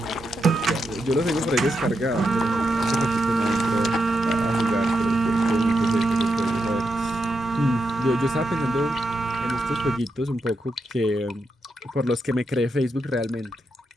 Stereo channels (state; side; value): normal; both; correlation 0.85